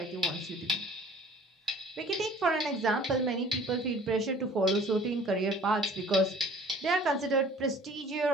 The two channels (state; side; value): normal; both; correlation 0.50